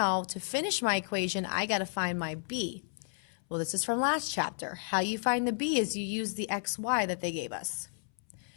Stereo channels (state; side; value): silent; right; 56 dB below the other